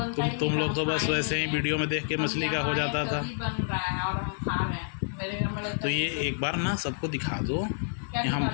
ही तुम नहीं लोग था, तो हम बस खाए वैसे नहीं ही है। वीडियो में देख के हम मछली का हो यहाँ जाता आए था। तभी बन रहा है और हम खा रहे हैं। मेरे घर में लगता तो है ये एक बार ना सबको दिखा दो क्या कि हम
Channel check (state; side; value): silent; right; 59 dB below the other